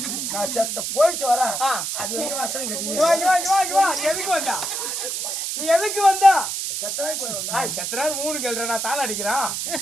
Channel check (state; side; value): noise; right; hiss, 3 dB below the sound